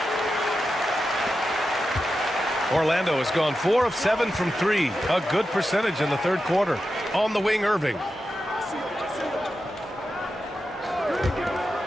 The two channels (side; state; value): both; normal; correlation 0.90